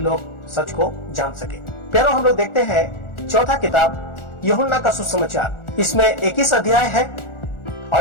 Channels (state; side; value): late; right; 1.4 ms